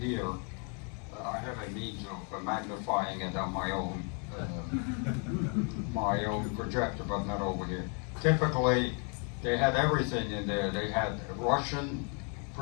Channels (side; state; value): right; quieter; 38.5 dB